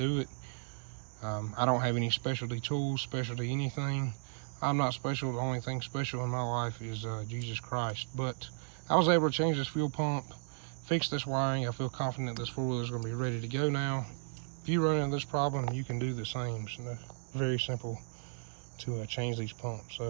it. I don't have any specialty tools, specialty anything. I'm not special. The only thing special in my life is Jesus Christ. But I was able to change this fuel pump, fix this wiring. I feel confident this four-wheeler is going to be ready to go now. If you run into this problem, you can do the same. So very simple to change these pumps. So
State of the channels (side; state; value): left; silent; digital silence